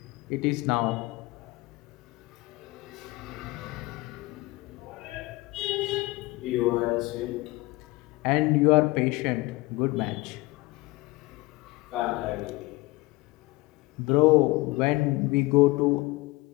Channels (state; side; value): quieter; right; 22.0 dB